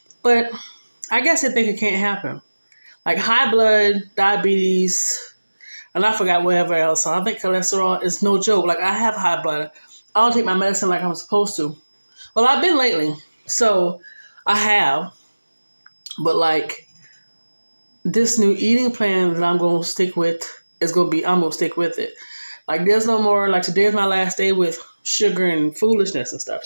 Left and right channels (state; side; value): inverted; both; correlation -1.00